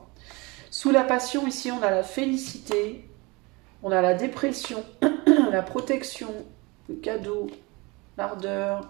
Sous la passion, ici, on a la félicité, on a la dépression, la protection, le cadeau, l'ardeur...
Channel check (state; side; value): quieter; left; 25.7 dB